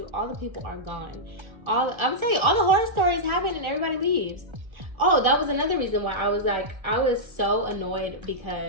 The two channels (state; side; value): late; left; 1.3 ms